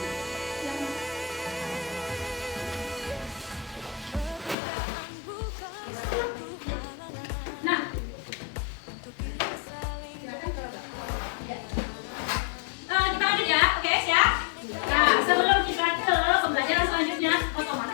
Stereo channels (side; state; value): right; drops out; at 4.5 s